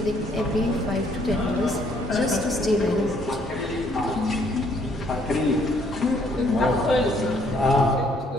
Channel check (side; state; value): both; normal; correlation 0.66